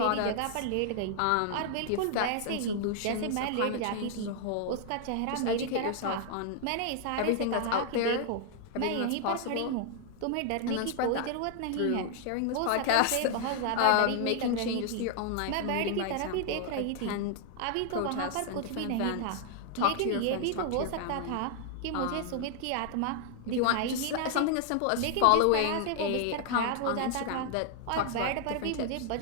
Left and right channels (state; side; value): different; both; correlation 0.00